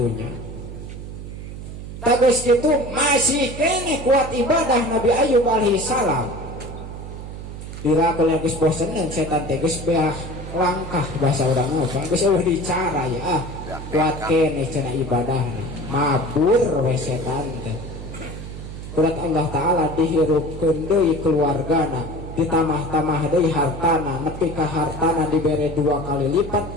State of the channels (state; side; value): noise; right; hum, 10 dB below the sound